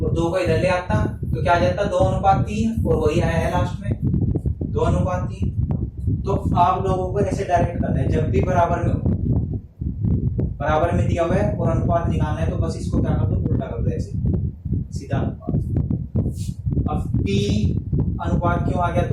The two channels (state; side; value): identical; both; correlation 1.00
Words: 2 को इधर ले आता, तो क्या आ जाता, 2 अनुपात 3, और वही आया है लास्ट में 2 अनुपात 3। तो आप लोगों को ऐसे डायरेक्ट करना है, जब भी बराबर में हो, बराबर में दिया हुआ है और अनुपात निकालना है, तो बस इसको क्या कर दो, उल्टा कर दो ऐसे, सीधा अनुपात। अब p अनुपात क्यों आ गया